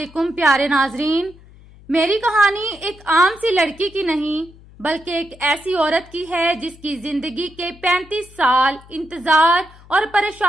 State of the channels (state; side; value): noise; left; hum, 23 dB below the sound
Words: پیارے ناظرین، میری کہانی ایک عام سی لڑکی کی نہیں بلکہ ایک ایسی عورت کی ہے جس کی زندگی کے 35 سال انتظار اور